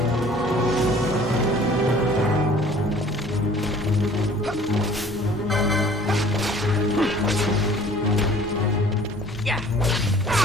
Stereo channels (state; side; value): normal; both; correlation 0.51